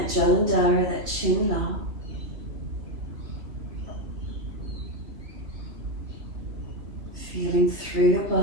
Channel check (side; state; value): left; late; 3.3 ms